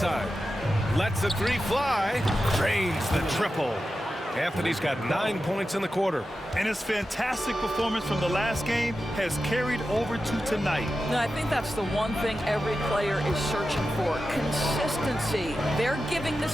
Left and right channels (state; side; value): normal; both; correlation 0.92